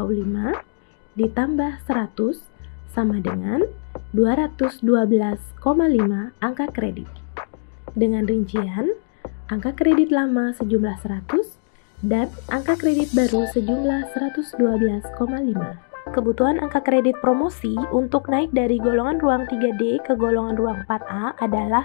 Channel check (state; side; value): silent; right; digital silence